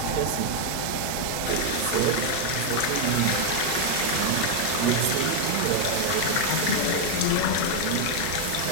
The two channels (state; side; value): different; both; correlation 0.00